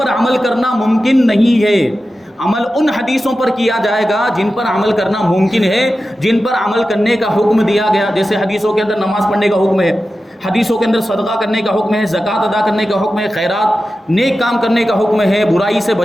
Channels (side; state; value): both; normal; correlation 0.93